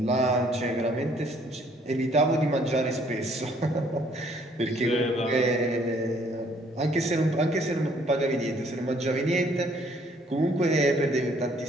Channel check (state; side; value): normal; both; correlation 0.63